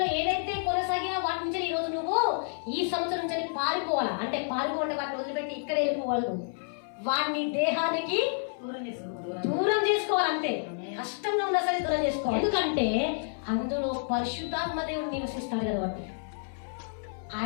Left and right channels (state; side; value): silent; right; 58 dB below the other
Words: ఏదైతే కొనసాగినా వాటి నుంచి ఈ రోజు నువ్వు ఈ సంవత్సరం నుంచి పారిపోవాలా. అంటే పారిపోవాలంటే వాటిని వదిలిపెట్టి ఇక్కడ వెళ్ళిపోవాలి. వాటిని దేహానికి దూరం చేసుకోవాలి. అంతే, కష్టంగా ఉన్నా సరే దూరం చేసుకోవాలి. ఎందుకంటే అందులో పరిశుద్ధాత్మ దేవుడు నివసిస్తాడు కాబట్టి